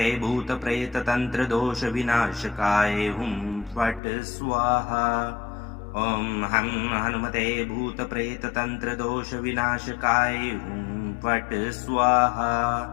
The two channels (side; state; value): right; drops out; at 4.0 s